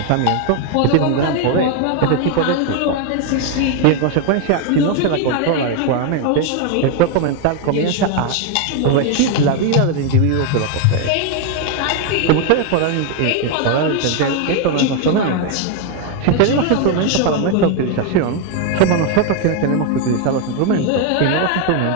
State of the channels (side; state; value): both; different; correlation 0.01